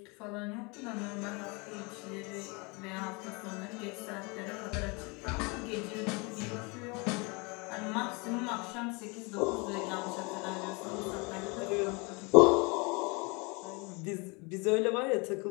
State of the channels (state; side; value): quieter; right; 29.3 dB